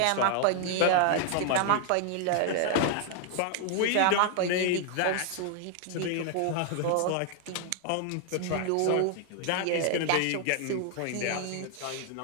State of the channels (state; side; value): different; both; correlation 0.00